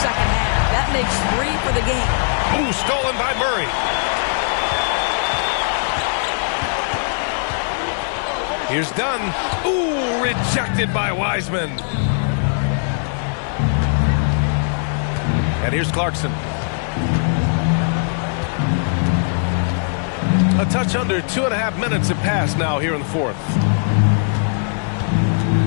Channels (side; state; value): right; silent; digital silence